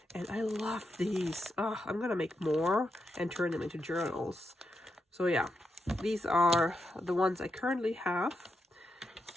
and I love these. I'm gonna make more and turn them into journals. So yeah, these are the ones I currently have.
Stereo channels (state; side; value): normal; both; correlation 0.85